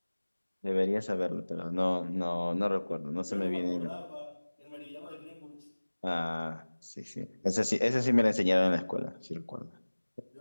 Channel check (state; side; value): inverted; both; correlation -1.00